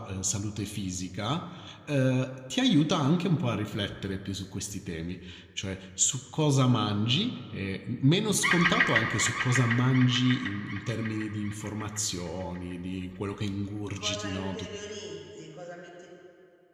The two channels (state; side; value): identical; both; correlation 1.00